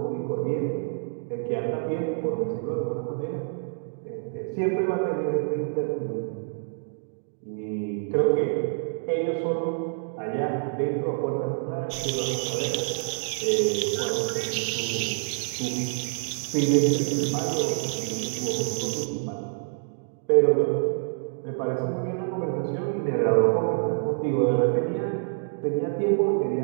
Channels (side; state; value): left; silent; digital silence